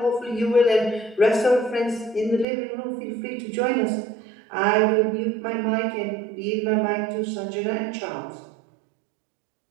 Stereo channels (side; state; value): left; drops out; at 2.5 s